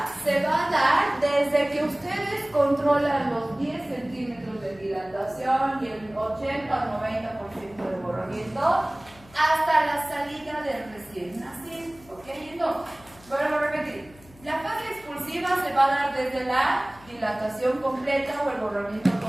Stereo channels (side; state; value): left; noise; hum, 24 dB below the sound